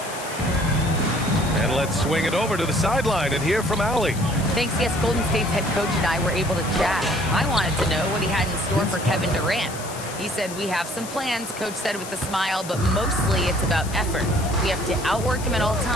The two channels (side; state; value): left; noise; hiss, 12 dB below the sound